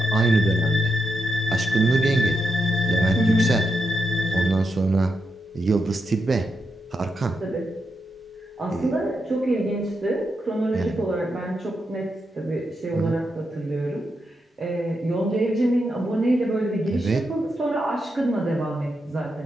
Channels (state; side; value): normal; both; correlation 0.84